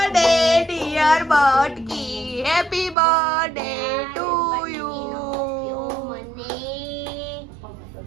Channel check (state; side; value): drops out; left; at 3.0 s